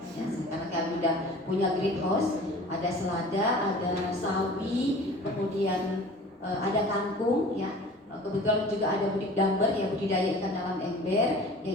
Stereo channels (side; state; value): both; normal; correlation 0.43